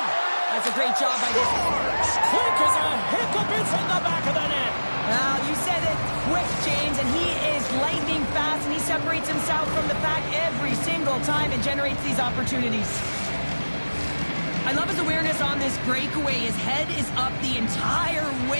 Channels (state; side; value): inverted; both; correlation -1.00